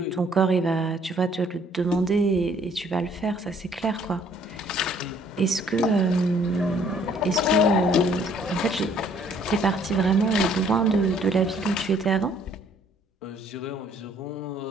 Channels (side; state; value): both; normal; correlation 0.61